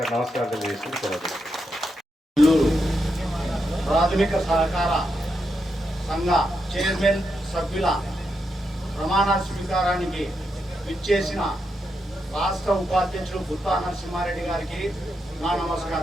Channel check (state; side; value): normal; both; correlation 0.83